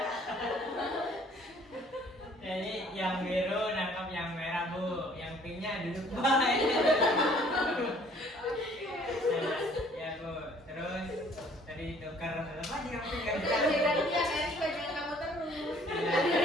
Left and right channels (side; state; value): both; normal; correlation 0.57